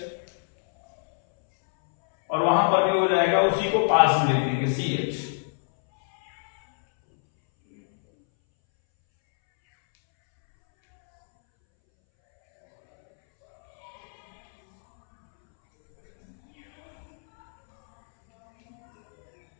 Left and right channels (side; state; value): right; silent; 62 dB below the other